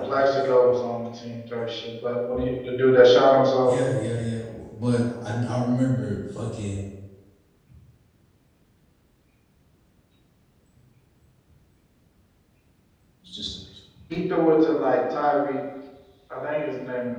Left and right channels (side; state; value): both; identical; correlation 1.00